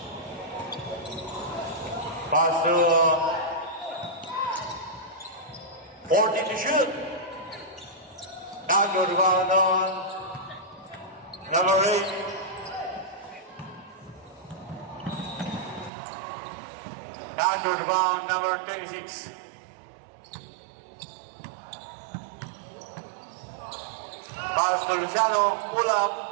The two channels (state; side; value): drops out; left; at 15.9 s